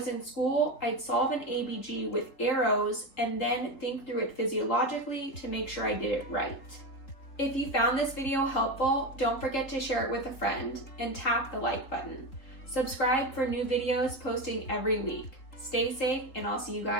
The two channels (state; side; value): late; right; 3.8 ms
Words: in school, I'd solve an ABG with arrows and then think through it physiologically to make sure I did it right. If you found this video helpful, don't forget to share it with a friend and tap the like button. Subscribe for new videos posting every week. Stay safe, and I'll see you